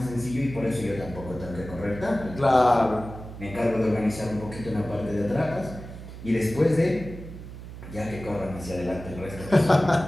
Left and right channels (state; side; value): noise; right; hum, 12 dB below the sound